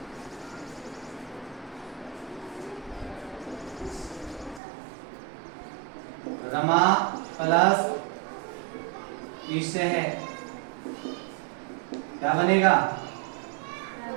रमा प्लस ईश है, क्या बनेगा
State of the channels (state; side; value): drops out; left; at 4.6 s